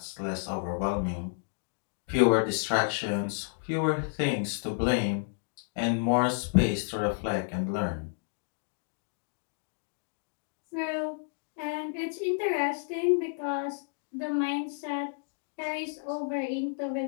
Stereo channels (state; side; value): silent; right; digital silence